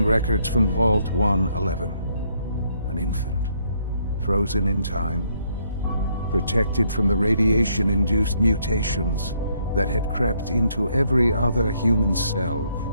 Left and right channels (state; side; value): inverted; both; correlation -0.71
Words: records from Vault 111. An infant, frozen in time, protected from the radiation-induced mutations that had crept into every other human cell